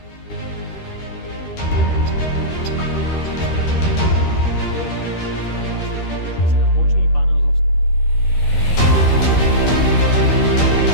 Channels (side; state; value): right; late; 13 ms